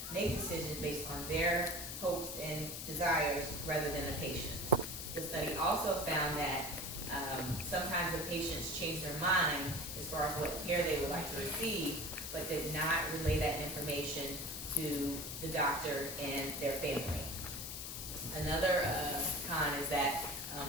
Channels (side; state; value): left; noise; hiss, 6 dB below the sound